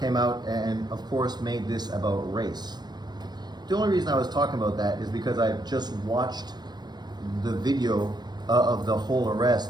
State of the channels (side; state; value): left; late; 0.20 ms